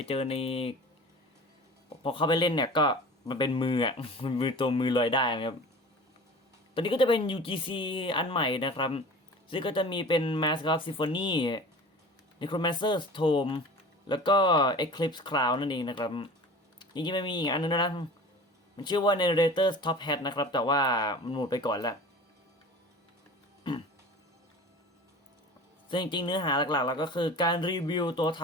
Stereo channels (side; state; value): both; normal; correlation 0.38